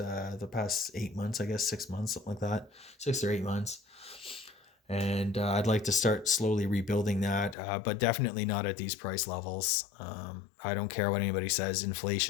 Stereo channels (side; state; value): right; drops out; at 7.6 s